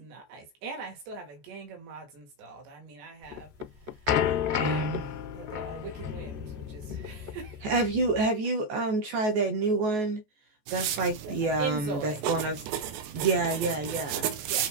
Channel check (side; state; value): left; late; 14 ms